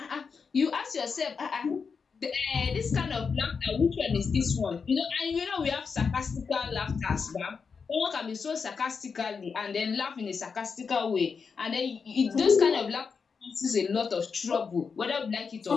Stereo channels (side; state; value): right; quieter; 5.5 dB